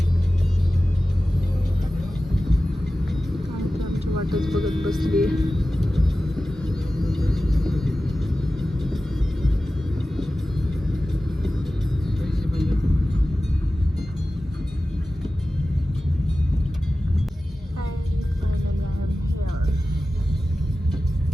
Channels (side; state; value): both; normal; correlation 0.95